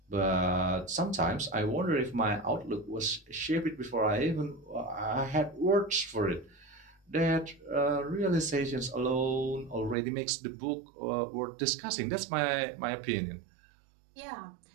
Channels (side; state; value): left; drops out; at 10.0 s